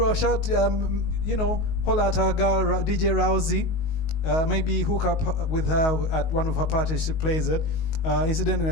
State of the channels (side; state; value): right; late; 19 ms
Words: holla at our girl DJ Rousey. Maybe hook up with her at one of her parties. She plays it. Incidentally,